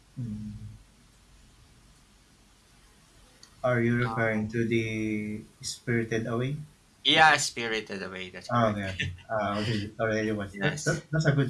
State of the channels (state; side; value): identical; both; correlation 1.00